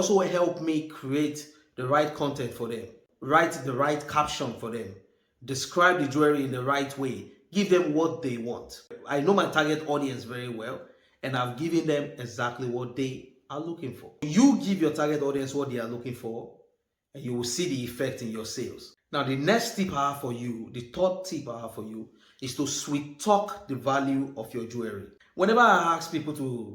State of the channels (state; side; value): identical; both; correlation 1.00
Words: helped me create the right content for them, write the right caption for them, describe the jewelry in the right way, give them what they want. I know my target audience very well, and I've given them exactly what they are looking for. You give your target audience what they are looking for, and you will see the effect in your sales. Now, the next tip I have for you, the third tip I have for you, is to sweet talk the value of your jewelry.